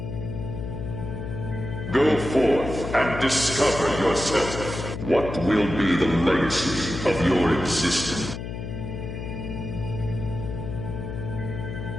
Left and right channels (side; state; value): left; noise; hum, 7 dB below the sound